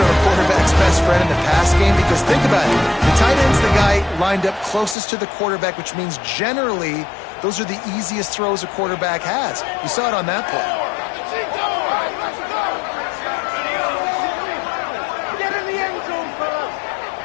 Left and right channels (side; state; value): right; drops out; at 5.0 s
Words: a quarterback's best friend in the pass game because think about it. The tight end's the guy lined up closest to the quarterback, which means generally those are the easiest throws a quarterback has. You saw it on that play.